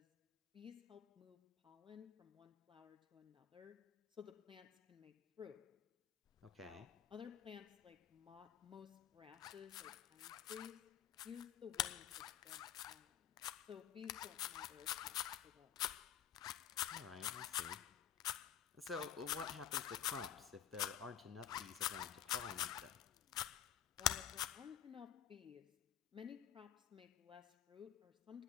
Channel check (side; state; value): right; quieter; 10.3 dB